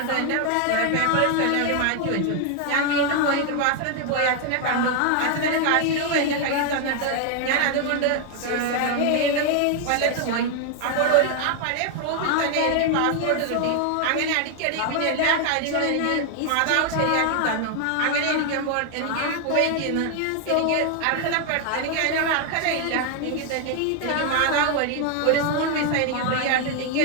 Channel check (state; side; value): different; both; correlation 0.00